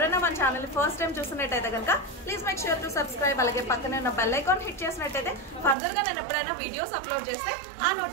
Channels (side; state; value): left; drops out; at 5.8 s